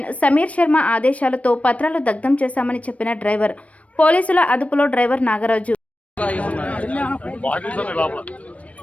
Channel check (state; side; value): late; right; 0.065 ms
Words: Sameer Sharma ఆదేశాలతో పత్రాలు దగ్ధం చేశామని చెప్పిన డ్రైవర్. పోలీసుల అదుపులో డ్రైవర్ నాగరాజు.